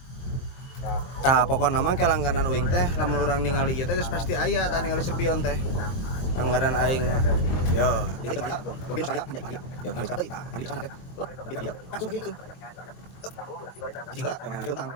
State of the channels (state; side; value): late; right; 23 ms